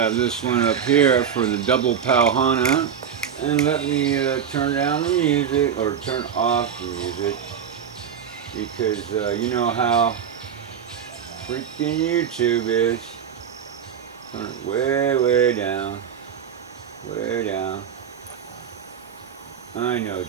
this one up here for the double Keaau Hana. And let me turn down the music, or turn off the music, because you know how freaking YouTube is. Turn it way, way down. Way down. I know,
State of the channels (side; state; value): left; quieter; 8.0 dB